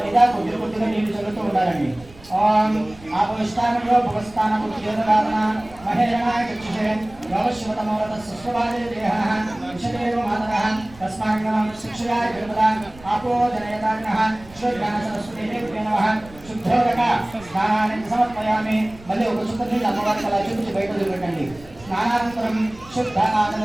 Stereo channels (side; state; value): right; noise; rumble, 22 dB below the sound